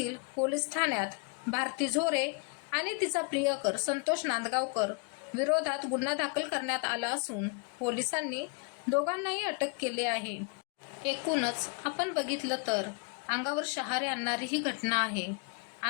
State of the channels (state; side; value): quieter; right; 33.9 dB